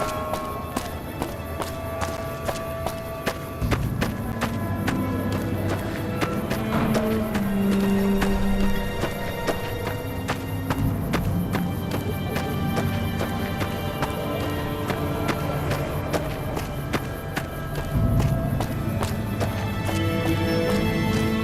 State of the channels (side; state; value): both; identical; correlation 1.00